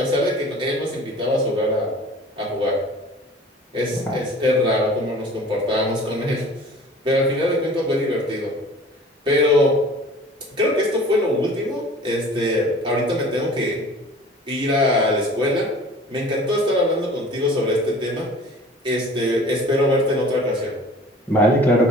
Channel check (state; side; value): normal; both; correlation 0.46